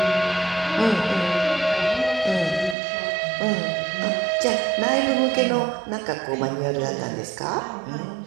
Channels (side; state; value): left; drops out; at 2.8 s